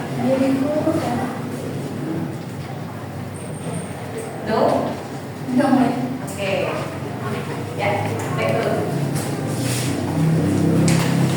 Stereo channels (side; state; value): both; identical; correlation 1.00